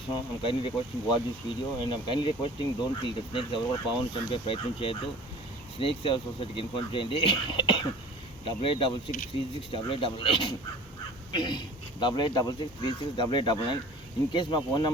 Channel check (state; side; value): normal; both; correlation 0.44